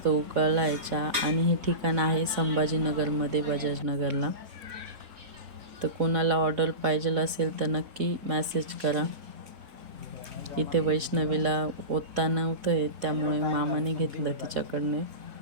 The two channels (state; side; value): late; left; 4.1 ms